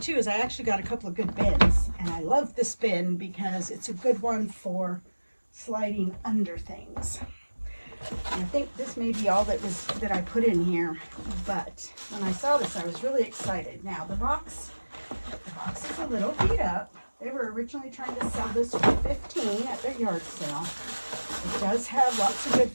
too is I actually got a couple of good bins. And I love this bin because it's a good one for sliding under things. And I think this may be all that I put in here. But when I saw this, I was really excited. Now the box is a little beat up. They were originally trying to sell this for $15 at their yard sale. It does have lots of good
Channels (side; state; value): both; inverted; correlation -1.00